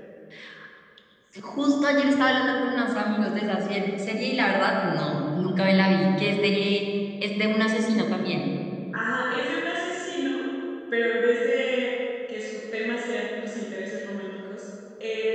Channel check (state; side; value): identical; both; correlation 1.00